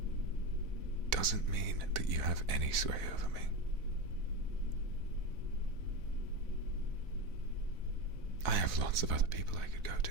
doesn't mean that you have any sway over me. I have lots of other people I could go to,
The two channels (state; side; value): late; left; 4.0 ms